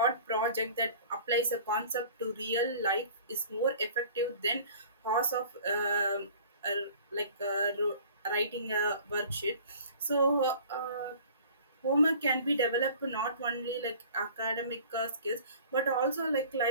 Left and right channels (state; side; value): inverted; both; correlation -0.46